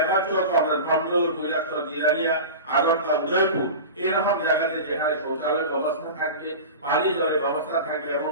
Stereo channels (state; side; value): inverted; both; correlation -0.30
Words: জব আমরা ধর্মনগর, কৈলাসহর, জিরানিয়া, আগরতলা, উদয়পুর এরকম জায়গাতে যেখানে শৌচালয়ের ব্যবস্থা থাকবে, পানি জলের ব্যবস্থা থাকবে এবং